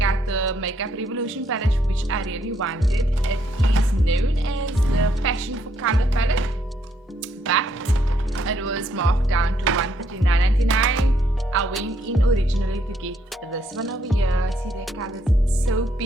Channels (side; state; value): both; normal; correlation 0.72